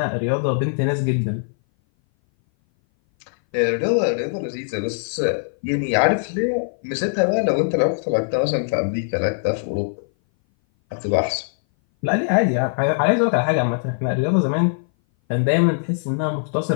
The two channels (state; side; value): silent; right; 59 dB below the other